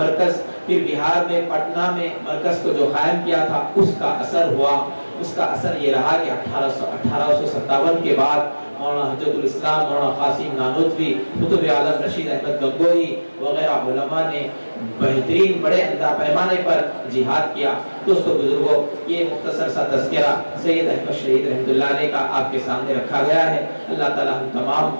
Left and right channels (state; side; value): inverted; both; correlation -1.00